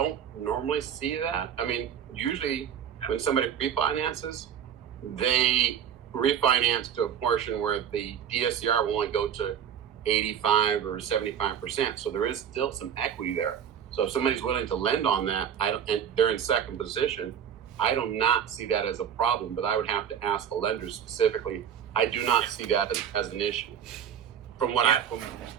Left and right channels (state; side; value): quieter; left; 8.5 dB